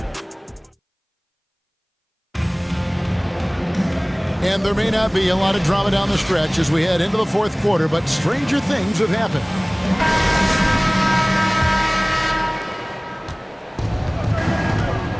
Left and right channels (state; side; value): identical; both; correlation 1.00